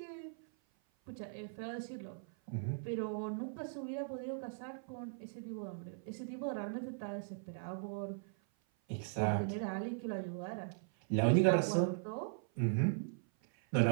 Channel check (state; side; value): silent; left; 52 dB below the other